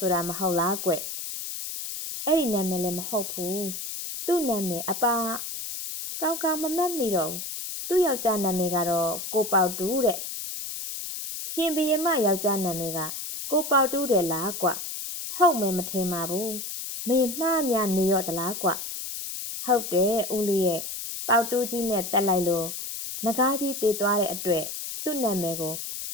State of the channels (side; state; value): left; noise; hiss, 6 dB below the sound